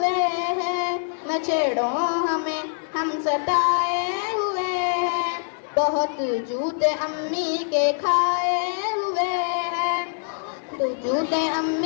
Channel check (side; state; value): right; silent; digital silence